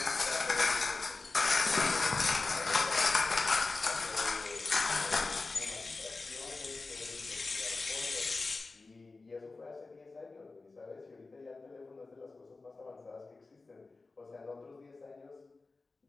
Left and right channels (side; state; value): right; quieter; 3.7 dB